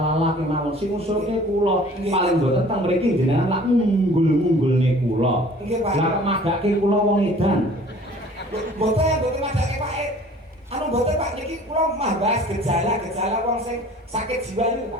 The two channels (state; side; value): normal; both; correlation 0.49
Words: kemawon. Sing ngusulke kula paling mboten teng mriki jenengan lak unggul-unggulne kula. Nggih Pak. Lah kok madake kula wong edan. Mboten madake Pak. Anu mboten Pak niki kula mah bahas gejala-gejala wong sing sakit jiwa niku